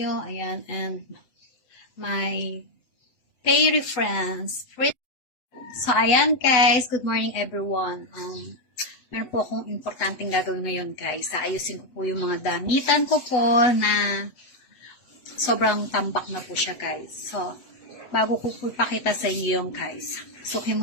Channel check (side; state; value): right; late; 8.0 ms